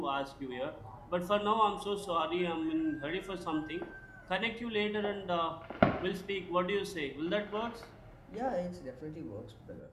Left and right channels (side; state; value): both; identical; correlation 1.00